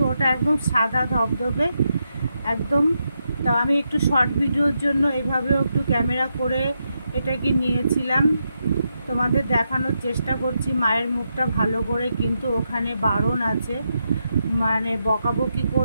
ওটা একদম সাদা ধবধবে একদম। তো আমি একটু শর্ট ভিডিওর জন্য এভাবেও একটু ক্যামেরা করে এটাকে নিয়েছিলাম, তোমাদের দেখানোর চেষ্টা করছি মায়ের মুখটা ভালো করে। কিন্তু ওখানে বারণ আছে, মানে বকাবকি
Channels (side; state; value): both; inverted; correlation -0.84